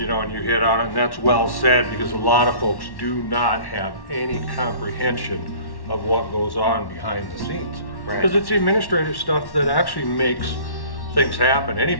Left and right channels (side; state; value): right; late; 1.1 ms